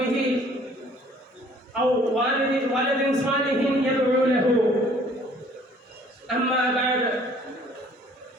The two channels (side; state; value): both; normal; correlation 0.57